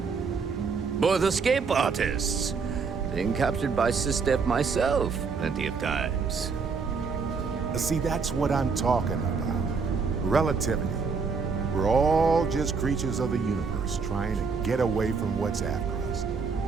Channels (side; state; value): left; quieter; 5.1 dB